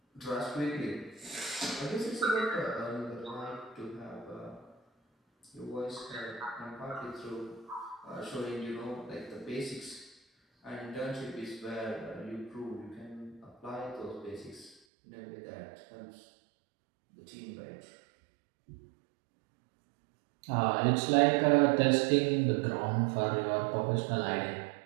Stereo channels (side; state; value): left; drops out; at 14.8 s